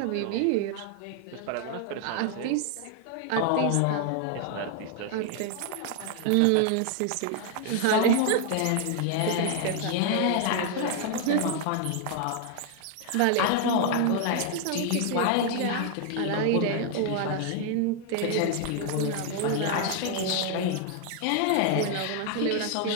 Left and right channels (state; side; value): different; both; correlation 0.00